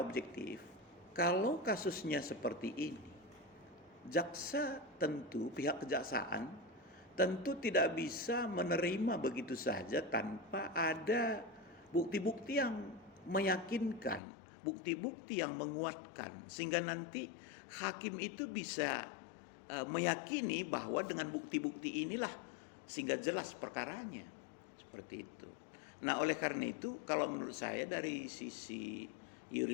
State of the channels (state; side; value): drops out; right; at 14.2 s